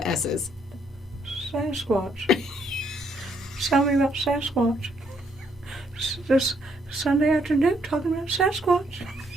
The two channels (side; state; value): both; normal; correlation 0.71